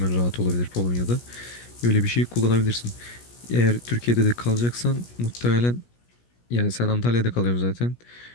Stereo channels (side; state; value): right; late; 17 ms